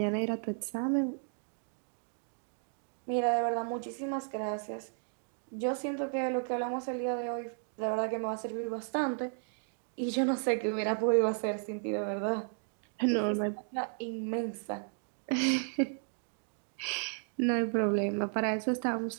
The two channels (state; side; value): silent; left; 55 dB below the other